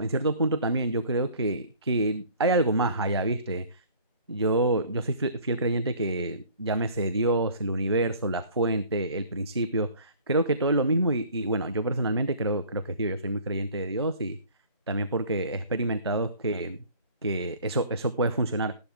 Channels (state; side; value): inverted; both; correlation -0.50